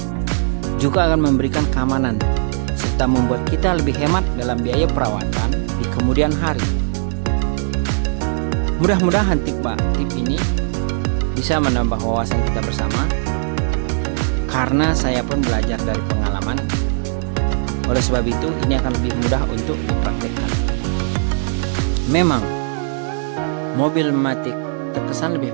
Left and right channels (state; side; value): silent; left; 66 dB below the other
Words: juga akan memberikan keamanan serta membuat kita lebih hemat dalam biaya perawatan di kemudian hari. Mudah-mudahan tip ini bisa menambah wawasan kita bersama, karena saya pun belajar dari pengalaman. Oleh sebab itu, ini akan lebih mudah untuk dipraktikkan. Memang mobil Matic terkesan